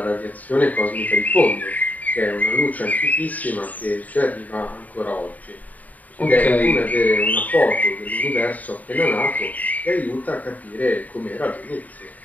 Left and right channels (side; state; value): right; late; 0.075 ms